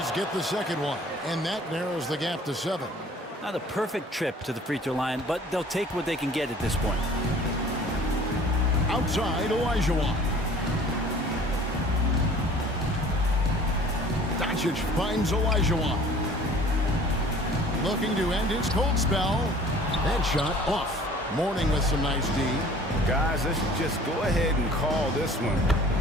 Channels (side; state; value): both; normal; correlation 0.49